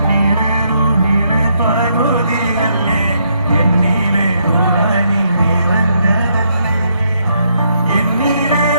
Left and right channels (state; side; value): inverted; both; correlation -0.75